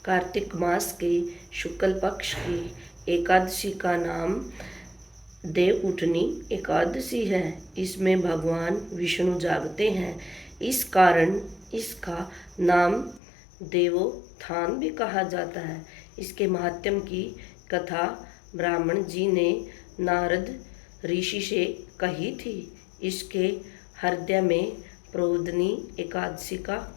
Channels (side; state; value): right; drops out; at 13.2 s